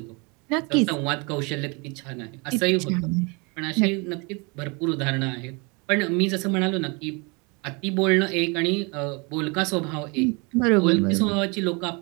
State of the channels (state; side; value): quieter; left; 30.1 dB